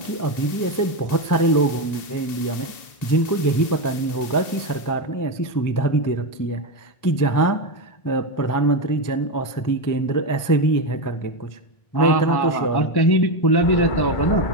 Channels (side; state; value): right; late; 1.9 ms